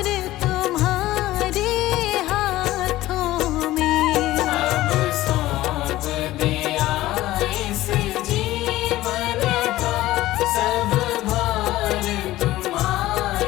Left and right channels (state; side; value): quieter; right; 16.2 dB